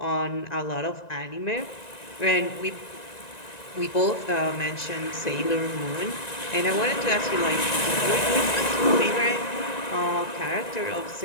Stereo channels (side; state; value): right; late; 1.9 ms